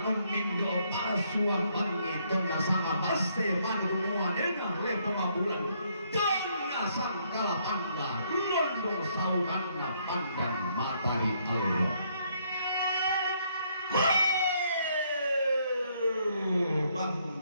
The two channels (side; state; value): both; inverted; correlation -0.70